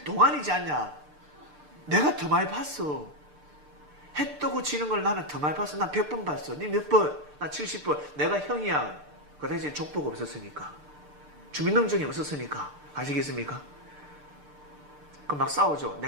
동안이지 않냐? 내가 더 많이 봤어. 해 뜨고 지는 걸 나는 더 많이 봤어. 난 100번 봤어. 니 몇 번? 나 70번. 내가 형이야. 그 당시에 족보가 없었으니까. 주민등록증이 없었으니까. 아시겠습니까? 그럼 막 싸우죠.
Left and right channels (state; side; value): late; left; 6.7 ms